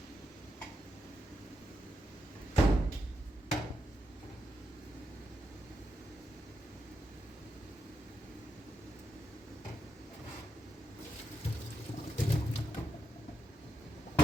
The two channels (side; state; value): both; normal; correlation 0.83